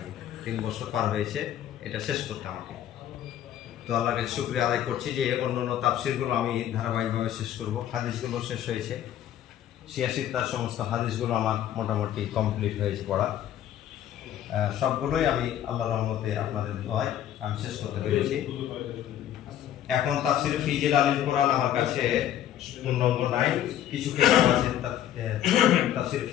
3 বছর পার হয়েছে এটা শেষ করতে আমাকে। তো আল্লাহর কাছে শুকরিয়া আদায় করছি যে অন্যান্য তাফসীরগুলো আমি ধারাবাহিকভাবে শেষ করব। হাদিসগুলো শেষ হয়েছে, 86টার সমস্ত হাদিসগুলো আমার মোটামুটি কমপ্লিট হয়েছে পড়া। সবগুলোই আমি আল্লাহর রহমতে আপনাদের দোয়ায় আমি শেষ করতে পেরেছি। এখন তাফসীর ফি জিলালিল কোরআন আমার কাছে পূর্ণাঙ্গ নাই, কিছু কিতাব আছে তাফসীর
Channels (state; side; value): quieter; right; 11.3 dB